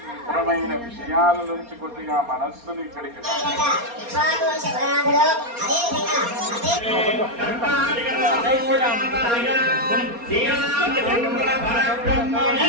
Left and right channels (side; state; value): left; late; 4.3 ms